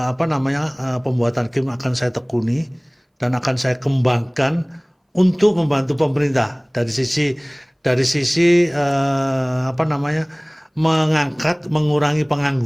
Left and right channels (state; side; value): identical; both; correlation 1.00